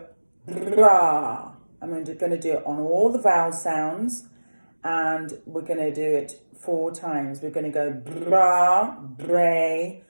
bra. I'm going to do it on all the vowel sounds, and we're going to do it 4 times. We're going to go bra, bray,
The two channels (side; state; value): both; inverted; correlation -1.00